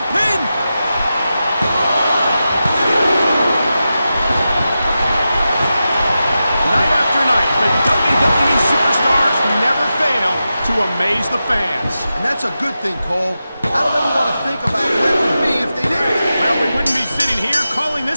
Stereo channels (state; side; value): inverted; both; correlation -0.91